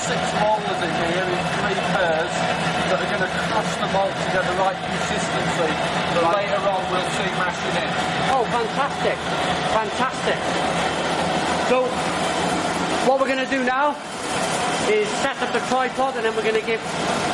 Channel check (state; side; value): identical; both; correlation 1.00